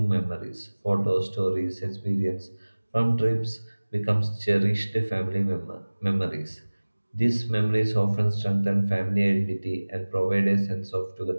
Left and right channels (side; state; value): both; inverted; correlation -1.00